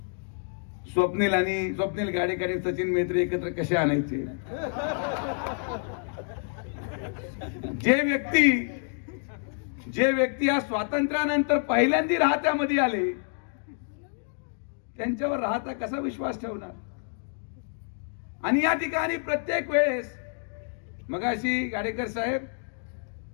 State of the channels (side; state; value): right; silent; 59 dB below the other